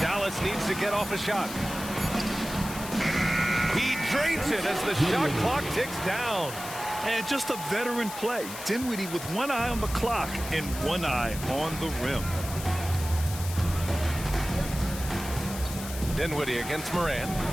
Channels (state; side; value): noise; left; hiss, 10 dB below the sound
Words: Dallas needs to get off a shot. He drains it as the shot clock ticks down. And just a veteran play. Dinwiddie with one eye on the clock and one eye on the rim. Dinwiddie against Morant.